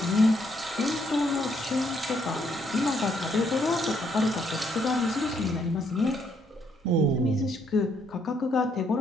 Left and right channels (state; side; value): normal; both; correlation 0.72